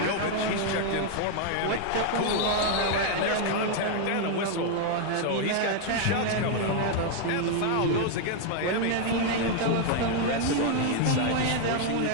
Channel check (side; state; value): both; different; correlation 0.00